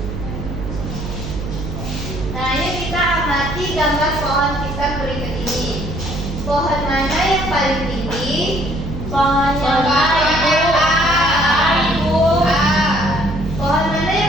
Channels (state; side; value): noise; right; hum, 7 dB below the sound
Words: Nah, ini kita amati gambar pohon pisang berikut ini. Pohon mana yang paling tinggi? Pohon yang paling Ibu. Ibu. Pohon mana